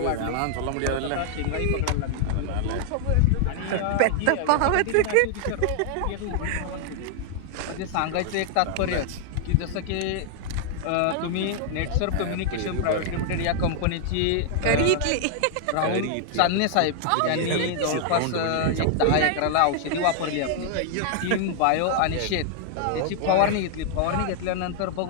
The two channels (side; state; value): both; different; correlation 0.00